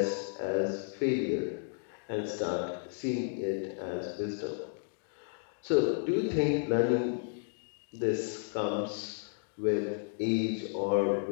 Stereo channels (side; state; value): right; silent; digital silence